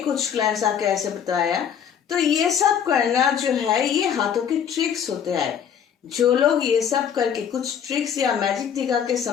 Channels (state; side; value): quieter; right; 8.3 dB